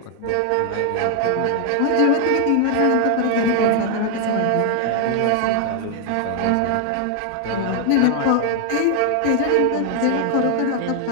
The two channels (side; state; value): both; different; correlation 0.00